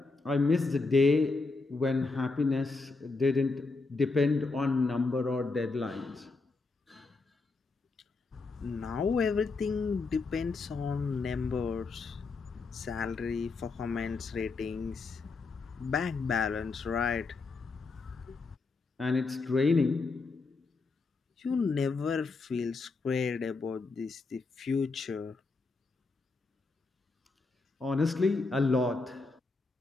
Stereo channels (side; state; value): right; quieter; 3.9 dB